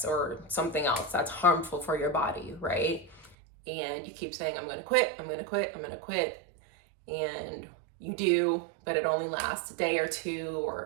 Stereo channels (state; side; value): drops out; left; at 3.4 s